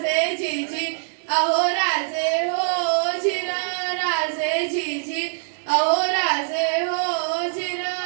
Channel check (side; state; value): left; silent; digital silence